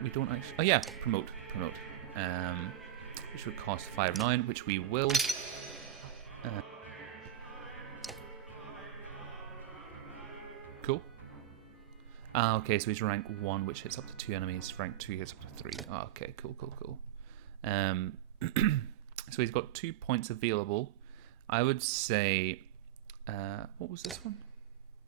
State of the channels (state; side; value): quieter; left; 12.3 dB